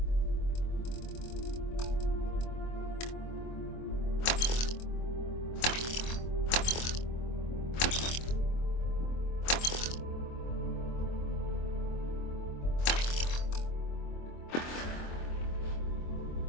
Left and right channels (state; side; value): late; right; 24 ms